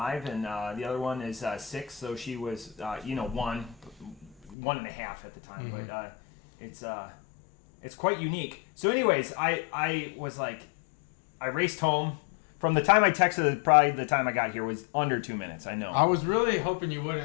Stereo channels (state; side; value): drops out; right; at 4.5 s